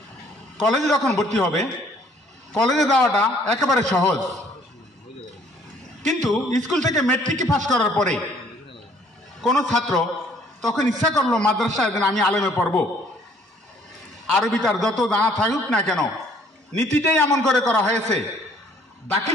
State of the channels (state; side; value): normal; both; correlation 0.60